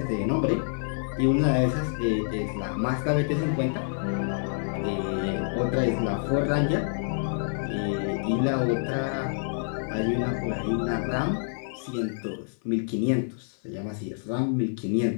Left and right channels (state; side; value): silent; right; digital silence